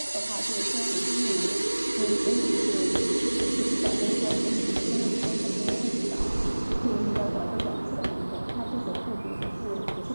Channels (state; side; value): inverted; both; correlation -1.00